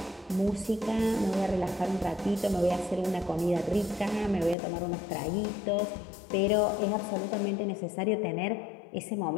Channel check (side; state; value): right; drops out; at 4.5 s